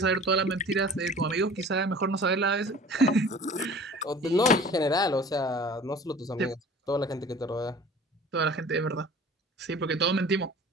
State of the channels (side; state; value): both; normal; correlation 0.45